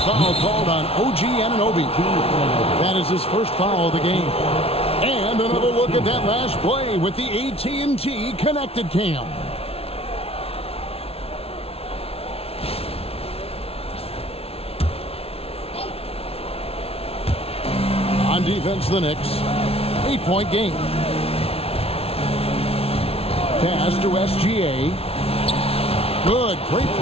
foul called on OG Anunoby. That is his first foul of the game. And another look at that last play with the AT&T Connected Cam. On defense, the Knicks. 8-point game. Pass to SGA. Good, great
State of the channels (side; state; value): right; late; 0.29 ms